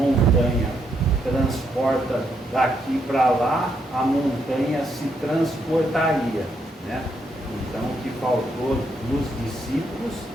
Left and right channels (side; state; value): both; normal; correlation 0.77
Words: transporta daqui para lá, a montanha se transportaria, Então o que faltou nos discípulos